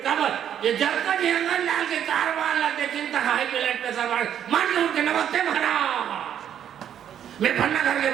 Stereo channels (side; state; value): left; quieter; 9.6 dB